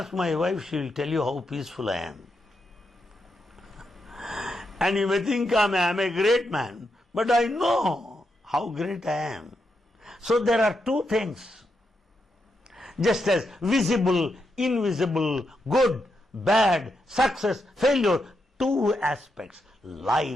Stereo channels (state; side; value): normal; both; correlation 0.83